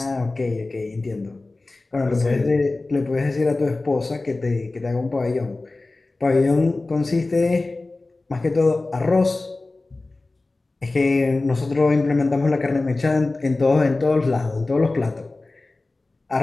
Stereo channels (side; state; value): right; quieter; 3.2 dB